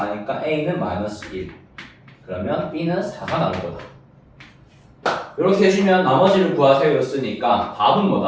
a는 마이너스 1. 그러면 b는 4가 나올 거다. 이렇게 해주면 나머지를 구하세요 였으니까 답은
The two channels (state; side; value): identical; both; correlation 1.00